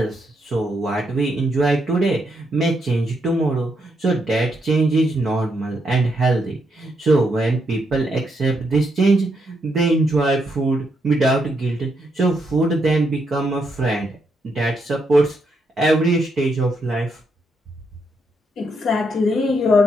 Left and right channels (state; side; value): normal; both; correlation 0.79